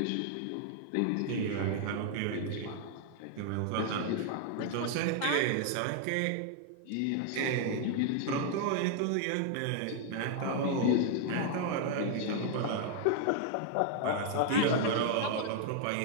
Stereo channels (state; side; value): different; both; correlation 0.00